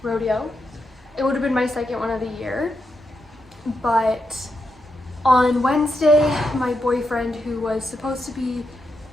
rodeo. It would have been my second one of the year, but on Wednesday my boyfriend, who was supposed to be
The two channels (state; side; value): normal; both; correlation 0.84